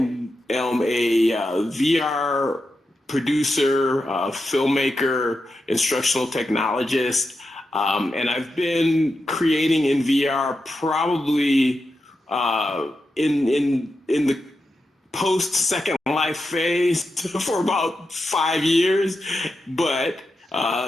am a VR producer, filmmaker, instructional technologist, and I've been creating in VR probably in the post Second Life phase for about 5 years, but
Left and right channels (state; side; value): normal; both; correlation 0.88